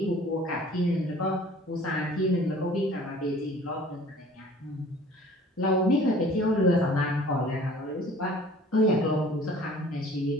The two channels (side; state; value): both; normal; correlation 0.49